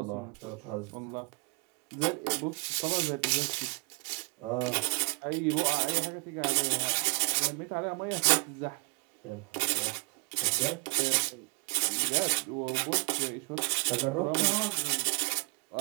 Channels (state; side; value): quieter; left; 30.0 dB